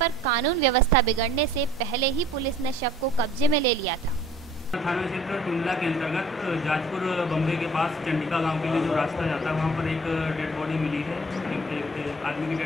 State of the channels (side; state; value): both; normal; correlation 0.52